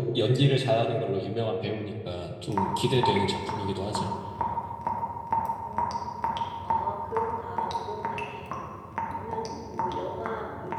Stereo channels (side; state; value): both; identical; correlation 1.00